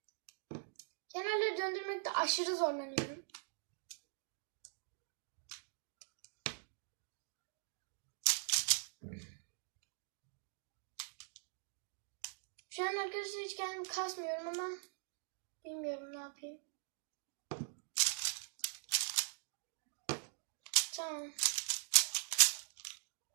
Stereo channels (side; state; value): left; silent; digital silence